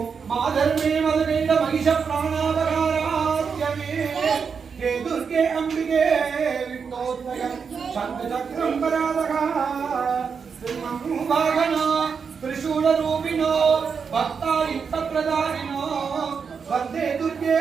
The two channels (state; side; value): quieter; left; 6.0 dB